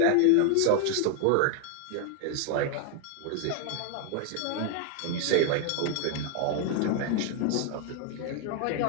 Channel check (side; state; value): both; different; correlation 0.00